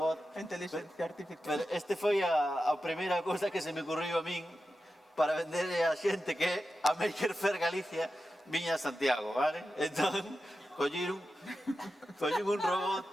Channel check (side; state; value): both; normal; correlation 0.91